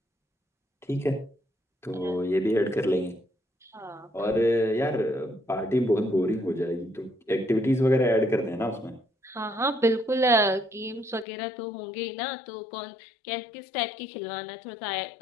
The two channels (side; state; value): right; drops out; at 11.2 s